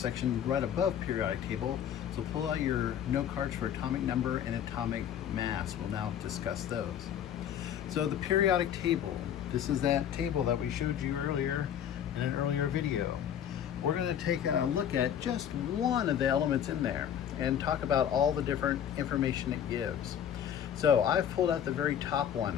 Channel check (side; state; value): right; quieter; 9.4 dB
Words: right above periodic table. So pull out your note cards for atomic number and atomic mass. We'll now discuss those. So the periodic table, this is that table that we showed you earlier in an earlier video. We're going to take a look at just one of the elements in there and talk about all the different information it gives. So I've pulled out the very top one,